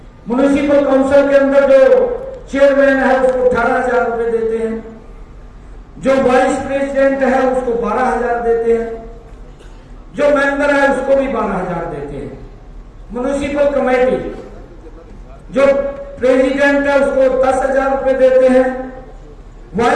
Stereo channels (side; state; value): both; identical; correlation 1.00